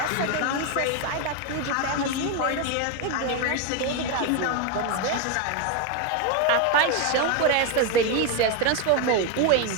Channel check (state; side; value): different; both; correlation 0.02